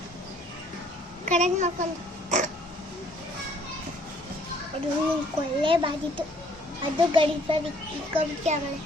ಕರೆಂಟ್ ಮಾಡ್ಕೊಂಡು ಅದು ಕೊಳ್ಳೆ ಬಾದಿತ್ತು ಅದು ಗಡಿಸ್ಬಾರ್ದು ಇಕ್ಕೊಬಿಟ್ಟು ಆಮೇಲೆ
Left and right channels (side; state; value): both; normal; correlation 0.61